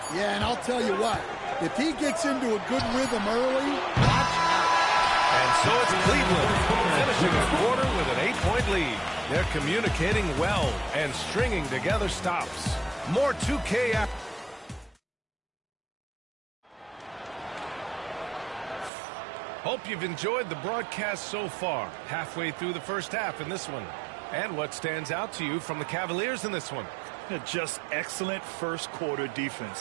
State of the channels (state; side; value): drops out; left; at 18.9 s